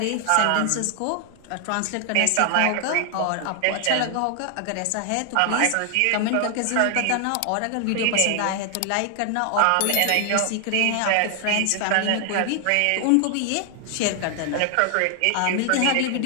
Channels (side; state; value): both; different; correlation 0.00